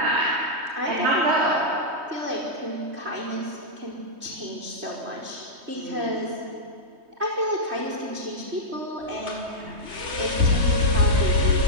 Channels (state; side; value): late; left; 3.2 ms